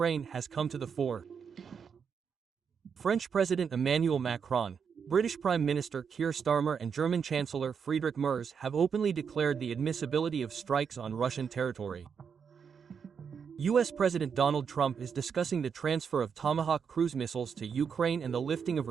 has come to the fore. French President Emmanuel Macron, British Prime Minister Keir Starmer and German Chancellor Friedrich Merz have openly declared the admissibility of strikes on Russian territory. US President Donald Trump is discussing the transfer of Tomahawk cruise missiles to Ukraine and the lifting of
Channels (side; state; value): left; quieter; 6.6 dB